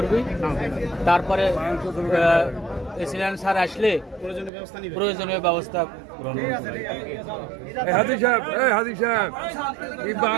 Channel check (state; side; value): drops out; left; at 4.5 s